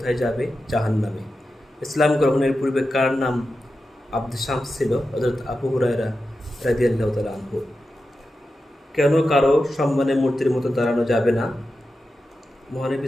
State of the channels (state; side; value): normal; both; correlation 0.91